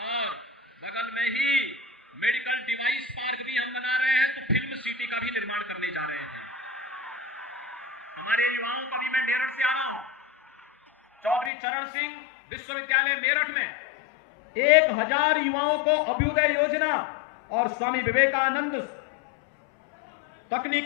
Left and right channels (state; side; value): drops out; right; at 11.5 s